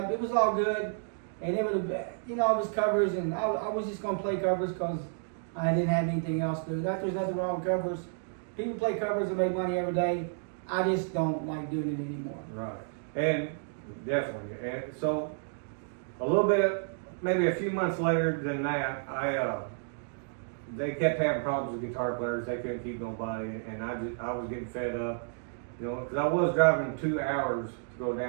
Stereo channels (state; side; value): silent; left; digital silence